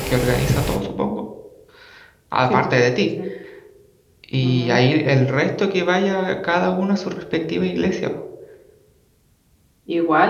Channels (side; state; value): both; identical; correlation 1.00